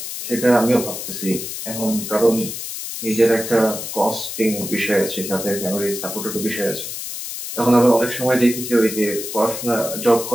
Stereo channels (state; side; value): noise; left; hiss, 7 dB below the sound